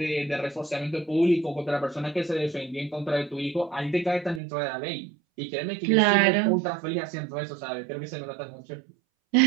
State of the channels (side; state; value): left; drops out; at 4.4 s